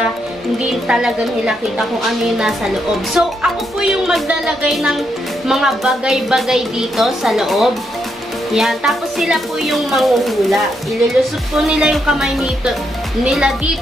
hindi talaga nila kita kung ano yung nasa loob. So, ako po yung maglalagay ng mga bagay-bagay dito sa loob. Yan. Tapos sila po yung manghuhula. Ililusot po nila yung kamay nila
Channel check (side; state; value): both; normal; correlation 0.79